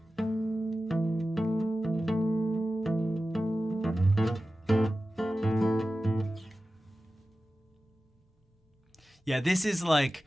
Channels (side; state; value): both; normal; correlation 0.94